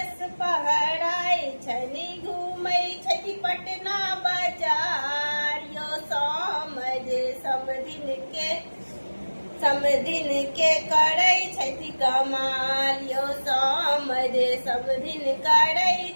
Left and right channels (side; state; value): both; inverted; correlation -1.00